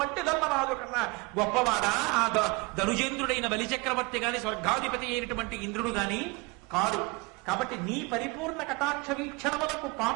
ధర్మరాజు కన్నా గొప్పవాడా ఆ ధనుజేంద్రుడైన బలిచక్రవర్తి గాని, స్వర్గాధిపతి అయినటువంటి ఇంద్రుడు గాని కాదు. కాబట్టి నీ పరిపూర్ణ కటాక్ష వీక్షణములకు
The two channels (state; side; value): quieter; left; 26.6 dB